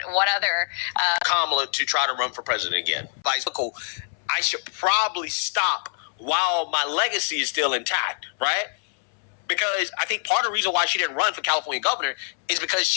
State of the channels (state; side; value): silent; right; 62 dB below the other